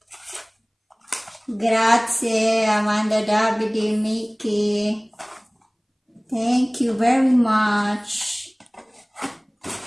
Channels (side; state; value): both; identical; correlation 1.00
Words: Grazie Amanda, Davide, Mickey. Thank you very much.